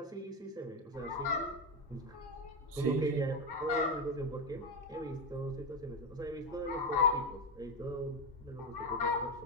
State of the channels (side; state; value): both; normal; correlation 0.12